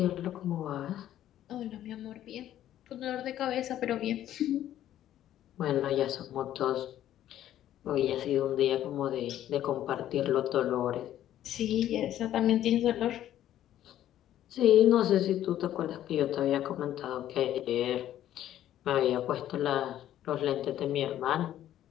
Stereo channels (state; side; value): quieter; right; 12.1 dB